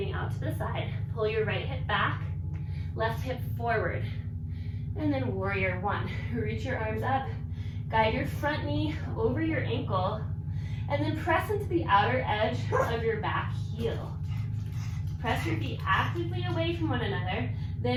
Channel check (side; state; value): both; identical; correlation 1.00